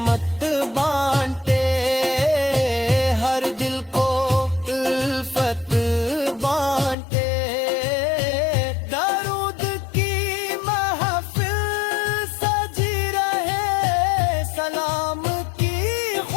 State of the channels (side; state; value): right; drops out; at 7.0 s